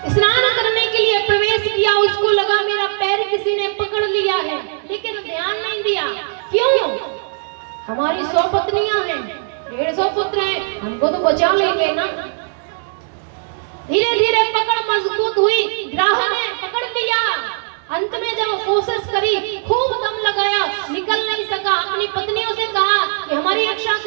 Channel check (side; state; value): left; silent; digital silence